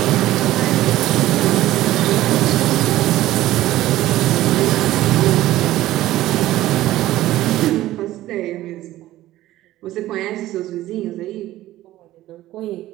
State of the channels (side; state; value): left; quieter; 15.2 dB